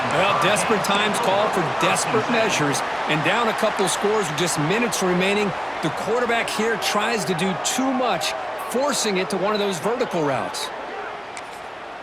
Well, desperate times call for desperate measures, and down a couple scores with just minutes remaining, the quarterback here tries to do too much, forcing it to one of those vertical routes.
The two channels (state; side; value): identical; both; correlation 1.00